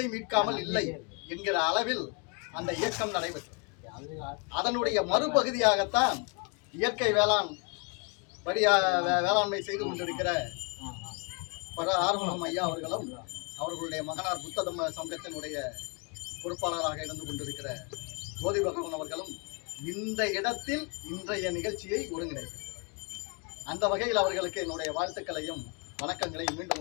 மீட்காமல் இல்லை என்கிற அளவில் அந்த இயக்கம் நடைபெற்றது. அதனுடைய மறுபகுதியாகத்தான் இயற்கை வேளாண்மை செய்து கொண்டிருக்கிற ஆறுமுகம் ஐயா அவர்களும் அவர்களுடைய மகனார் புத்த சங்கத்தினுடைய பொறுப்பாளராக இருந்து கொண்டிருக்கிற ஜோதி பகவான் அவர்களும் இந்த இடத்தில் இன்றைய நிகழ்ச்சியை ஒருங்கிணைக்கிறார். அந்த வகையில் அவர்களுக்கு என்னுடைய வாழ்த்துக்களையும் வணக்கங்களையும் மீண்டும்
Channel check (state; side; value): quieter; right; 33.7 dB